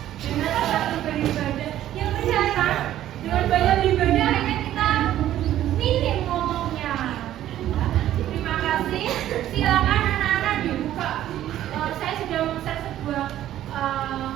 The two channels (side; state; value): left; quieter; 12.6 dB